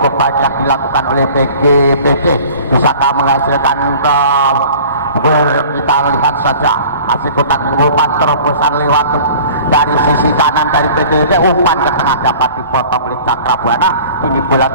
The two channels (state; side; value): inverted; both; correlation -0.45